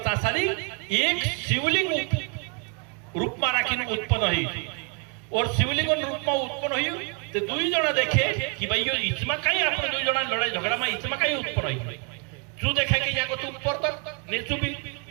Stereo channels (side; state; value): left; quieter; 35.0 dB